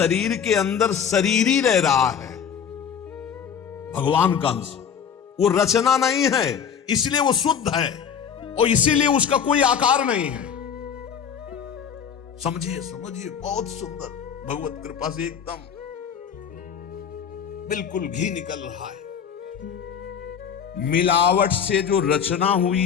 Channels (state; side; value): quieter; right; 7.6 dB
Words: के अंदर शरीर ही रह रहा है, भगवान का अंश, वो रचना नहीं है, इसलिए वो शुद्ध है और इसीलिए उसका कोई आकार नहीं है। समझिए, बहुत सुंदर, भगवत कृपा से एकदम बिल्कुल घी निकल रहा है। मिलावट से जो रचना